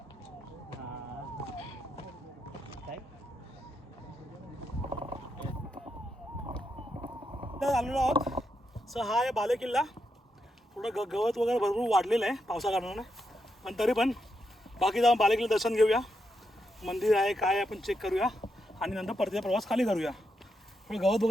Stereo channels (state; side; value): normal; both; correlation 0.83